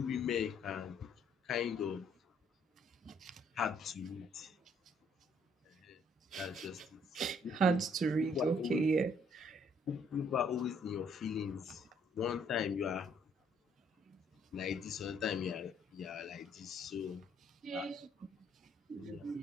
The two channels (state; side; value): normal; both; correlation 0.65